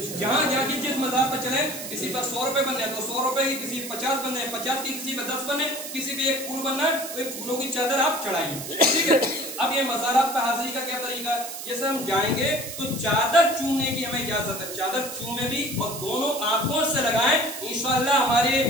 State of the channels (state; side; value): noise; right; hiss, 9 dB below the sound